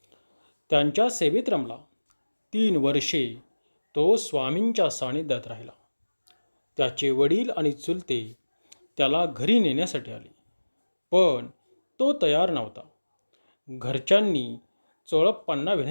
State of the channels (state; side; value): inverted; both; correlation -1.00